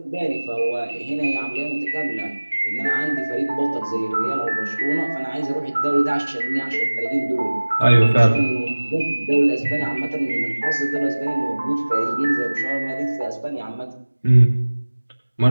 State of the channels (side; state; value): both; inverted; correlation -1.00